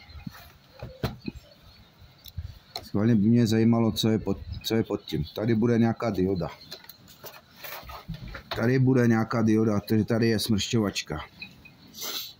Schválně by mě zajímalo, co je pod tím. Tady bude nějaká dioda. Tady bude nějaká dioda, takže tady je smršťovačka.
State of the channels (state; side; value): identical; both; correlation 1.00